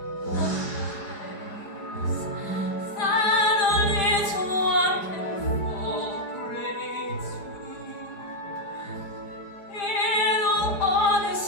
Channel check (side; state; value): right; late; 4.9 ms